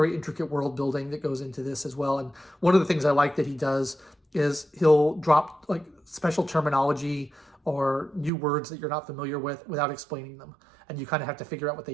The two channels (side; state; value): left; drops out; at 8.3 s